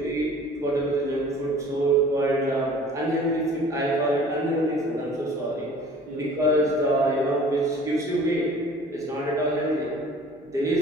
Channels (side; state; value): both; normal; correlation 0.48